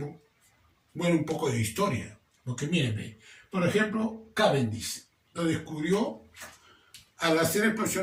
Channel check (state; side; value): identical; both; correlation 1.00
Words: poco de historia. Porque miren, por ejemplo, Cavendish lo descubrió al hacer